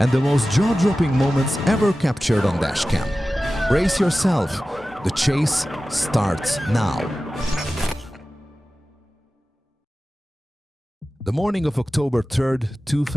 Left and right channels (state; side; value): normal; both; correlation 0.95